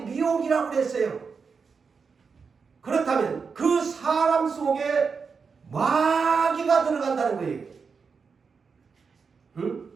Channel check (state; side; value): quieter; left; 5.4 dB